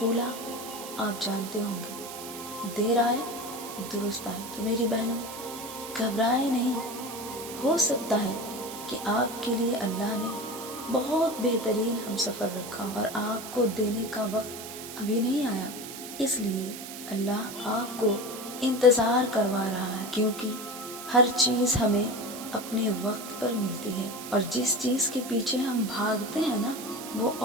آپ جانتے ہوں گے، دیر آئے درست آئے۔ تو میری بہنوں، گھبرائے نہیں، ہو سکتا ہے کہ آپ کے لیے اللہ نے بہت بہترین ہم سفر رکھا اور آپ کو دینے کا وقت ابھی نہیں آیا، اس لیے اللہ آپ کو انتظار کروا رہا ہے، کیونکہ ہر چیز ہمیں اپنے وقت پر ملتی ہے، اور جس چیز کے پیچھے ہم بھاگتے ہیں نا، وہ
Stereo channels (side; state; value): right; noise; hiss, 11 dB below the sound